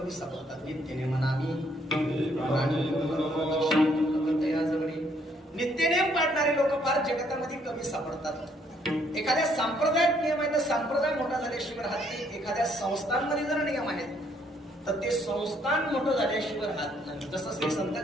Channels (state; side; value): normal; both; correlation 0.68